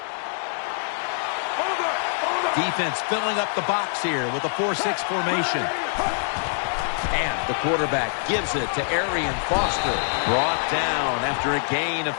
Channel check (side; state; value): right; silent; digital silence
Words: Defense filling up the box here with a 4-6 formation. And the quarterback gives it to Arian Foster. Brought down after a gain of